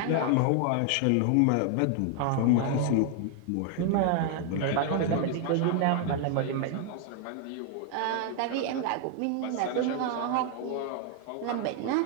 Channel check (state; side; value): different; both; correlation 0.00